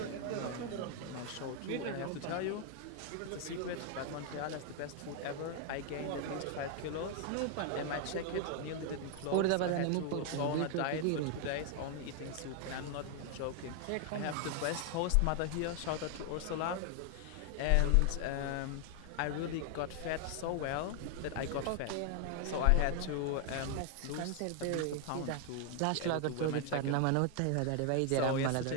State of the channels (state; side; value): different; both; correlation 0.00